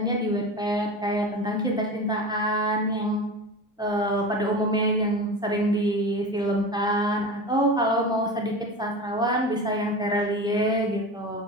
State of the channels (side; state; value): both; normal; correlation 0.29